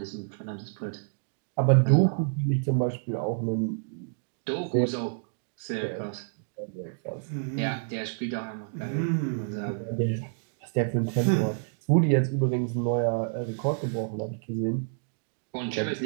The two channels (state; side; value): silent; left; digital silence